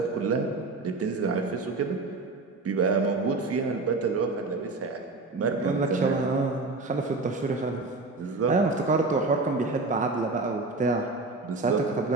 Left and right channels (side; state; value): left; quieter; 3.5 dB